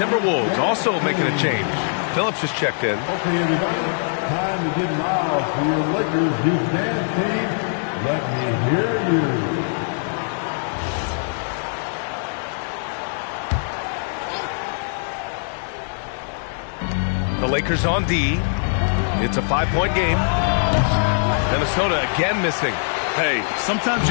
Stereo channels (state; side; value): silent; right; 63 dB below the other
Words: also making a change. Phillips is checked in. Okay, everybody, time to get loud for your Lakers defense team. Let me hear you. The Lakers on D. It's a 5-point game. Minnesota again missing. Hey, sometimes